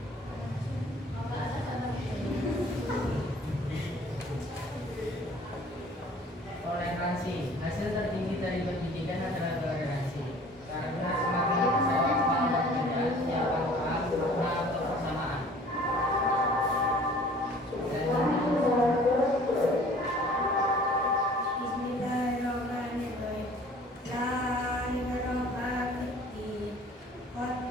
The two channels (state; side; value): normal; both; correlation 0.50